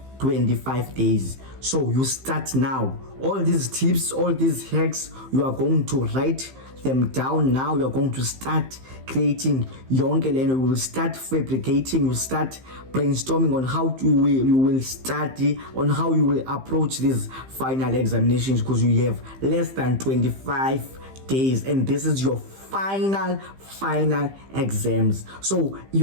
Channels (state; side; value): late; left; 15 ms